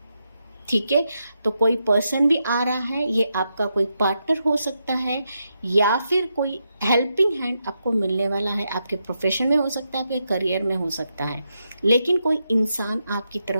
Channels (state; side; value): inverted; both; correlation -0.84